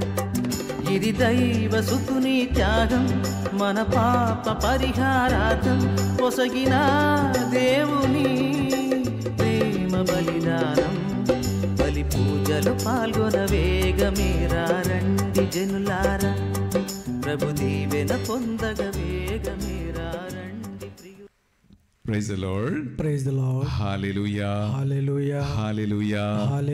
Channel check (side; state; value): both; identical; correlation 1.00